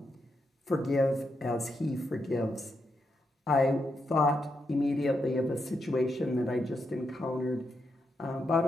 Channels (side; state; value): both; normal; correlation 0.83